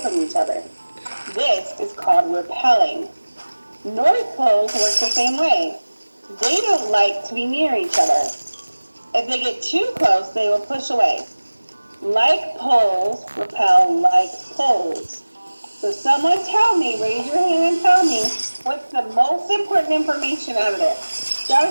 from each other. This is called repelling. North poles work the same way. They don't like to be near each other. If they get too close, they will push away. Like poles repel like poles. So someone tell me, raise your hand and tell me, what's the most important information out of this?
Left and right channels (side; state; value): both; inverted; correlation -1.00